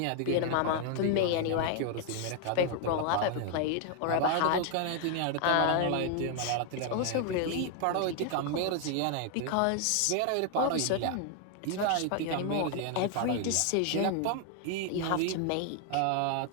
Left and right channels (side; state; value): both; different; correlation 0.00